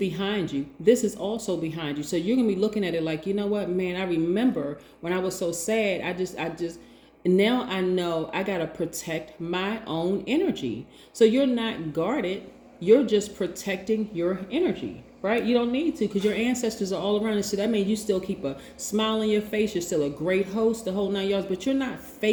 you. This is also behind you. So you're gonna be looking at it like, you know what, man, I remember when I was so sad, I just now I know I gotta protect my own energy. So you're not guarded, you're just protecting your energy. Right? You don't need to, because your ancestors are all around. And so that means you still keep a smile on your face. You're still a great host, the whole 9 yards, but you're not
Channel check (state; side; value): identical; both; correlation 1.00